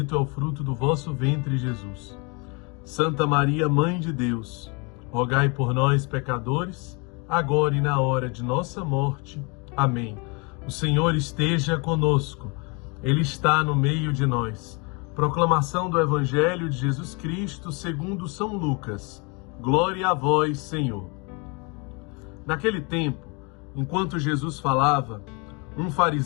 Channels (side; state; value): right; quieter; 31.1 dB